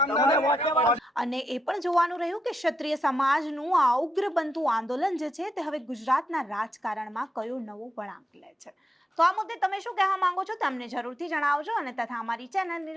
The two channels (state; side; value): normal; both; correlation 0.83